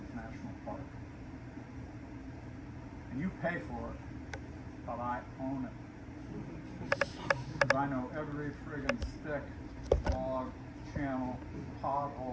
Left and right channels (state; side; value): identical; both; correlation 1.00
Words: National Park. And you pay for it, but I own it. Because I know every friggin' stick, log, channel,